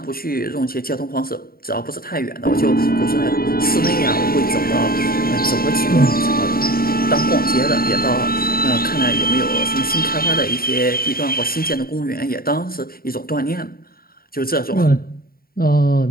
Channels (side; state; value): right; late; 0.43 ms